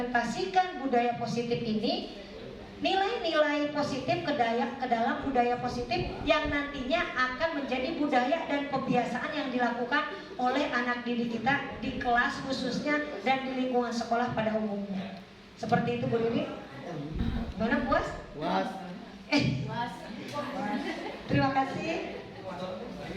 budaya positif ini, nilai-nilai positif ke dalam budaya positif yang nantinya akan menjadi budaya dan kebiasaan yang dilakukan oleh anak didik kita di kelas khususnya dan di lingkungan sekolah pada umumnya. Seperti itu Bu Riri. Gimana, puas? Puas. Terima kasih.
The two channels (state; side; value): identical; both; correlation 1.00